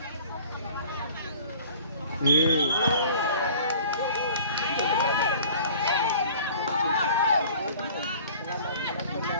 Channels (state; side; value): inverted; both; correlation -0.48